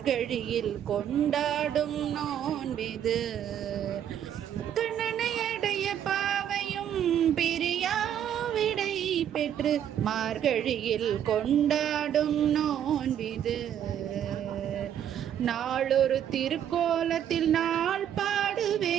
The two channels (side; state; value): left; quieter; 9.8 dB